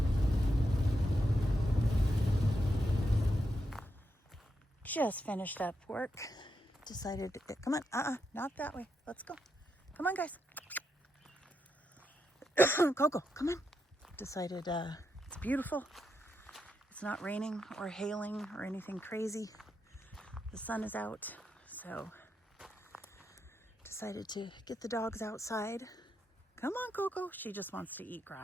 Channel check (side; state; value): both; normal; correlation 0.84